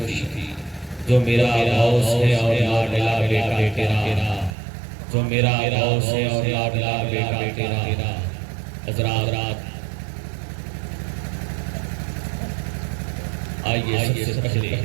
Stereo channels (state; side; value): drops out; left; at 4.5 s